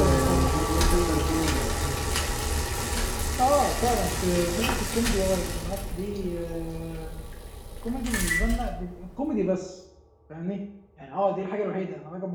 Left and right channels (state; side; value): identical; both; correlation 1.00